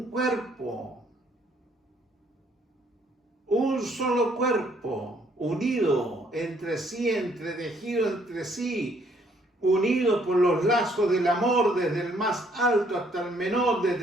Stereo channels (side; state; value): both; normal; correlation 0.66